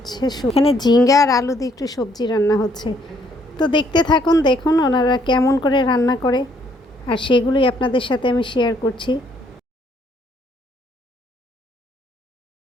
এখানে ঝিঙ্গা আর আলু দিয়ে একটু সবজি রান্না হচ্ছে। তো দেখতে থাকুন, দেখুন ওনারা কেমন করে রান্না করে, আর সেগুলোই আপনাদের সাথে আমি শেয়ার করছি।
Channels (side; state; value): both; normal; correlation 0.67